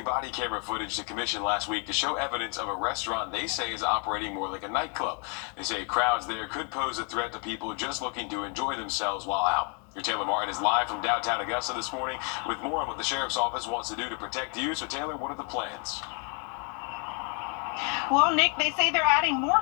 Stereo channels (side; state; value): right; quieter; 37.7 dB